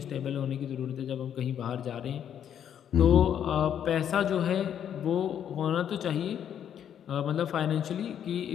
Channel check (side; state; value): right; quieter; 9.3 dB